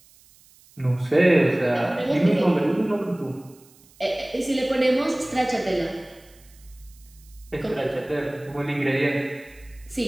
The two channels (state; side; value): noise; right; hiss, 28 dB below the sound